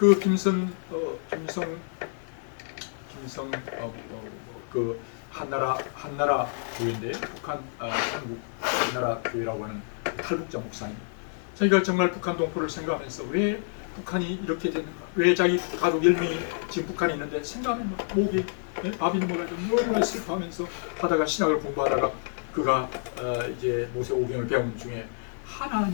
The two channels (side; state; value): right; silent; digital silence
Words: 김성 그 한나라 교회인데 북한 한국 한나라 교회라고 하는 탈북자 목사님. 자기가 정말 북한 동포를 생각하면서 왜 북한이 이렇게 됐는가? 왜 자기 가족 10명이 지금 북한에 있는데 생각하면 막 목에 밥이 넘어가지고 너무나 슬퍼하면서 하다가 신학을 공부하다가 그가 이제 모세 오경을 배우는 중에